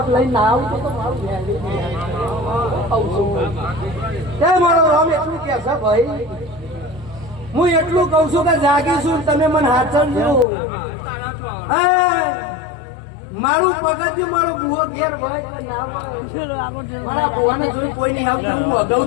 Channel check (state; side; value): drops out; right; at 10.5 s